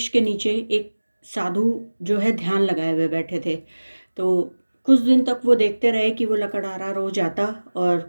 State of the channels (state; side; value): inverted; both; correlation -1.00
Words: के नीचे एक साधु जो है ध्यान लगाए हुए बैठे थे। तो कुछ दिन तक वो देखते रहे कि वो लकड़हारा रोज आता और